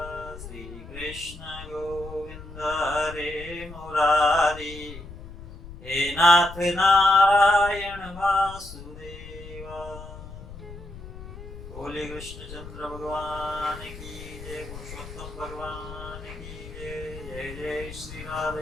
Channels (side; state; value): left; noise; rumble, 13 dB below the sound